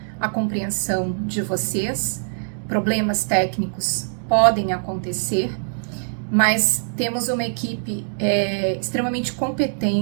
a compreensão de vocês. Problemas técnicos podem acontecer, mas temos uma equipe extremamente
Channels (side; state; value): left; silent; 64 dB below the other